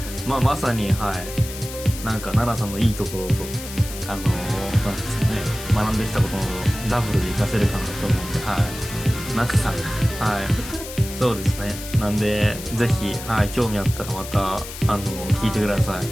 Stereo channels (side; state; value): left; noise; hiss, 11 dB below the sound